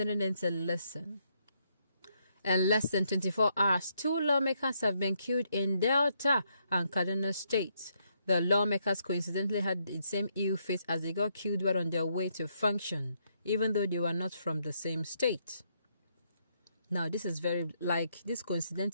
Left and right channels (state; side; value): inverted; both; correlation -0.76